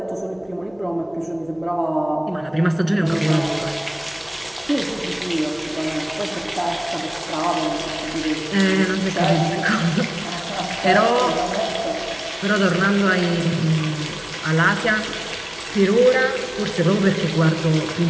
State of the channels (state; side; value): noise; right; hum, 28 dB below the sound